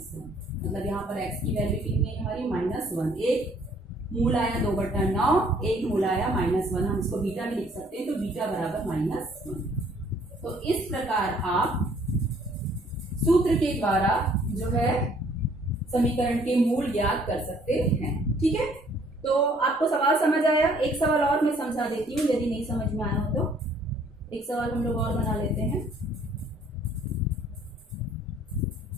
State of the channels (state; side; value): normal; both; correlation 0.61